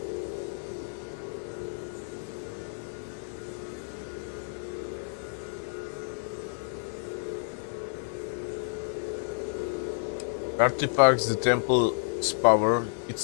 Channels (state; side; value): silent; right; digital silence